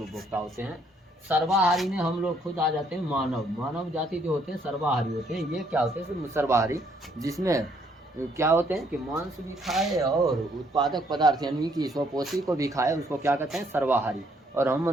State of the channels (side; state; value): both; normal; correlation 0.68